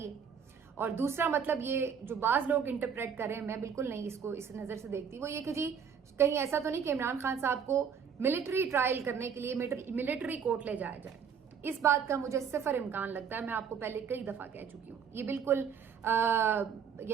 ہے، اور دوسرا مطلب یہ جو بعض لوگ انٹرپریٹ کر رہے ہیں، میں بالکل نہیں اس کو اس نظر سے دیکھتی، وہ یہ کہ جی کہیں ایسا تو نہیں کہ عمران خان صاحب کو ملٹری ٹرائل کرنے کے لیے ملٹری کورٹ لے جایا جائے۔ اس بات کا مجھے صفر امکان لگتا ہے، میں آپ کو پہلے کئی دفعہ کہہ چکی ہوں، یہ بالکل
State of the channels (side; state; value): left; quieter; 7.1 dB